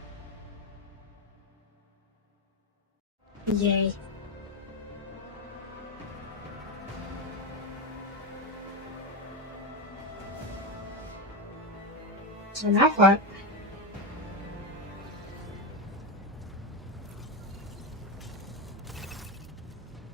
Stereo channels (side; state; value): both; normal; correlation 0.11